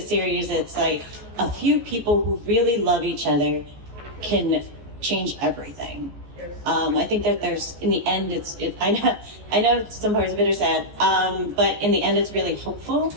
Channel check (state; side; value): late; left; 14 ms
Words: it's like a few people who really love each other can change everything. I think that there's, in the end, I know some parts of it are sad, but in the end, it's really hopeful.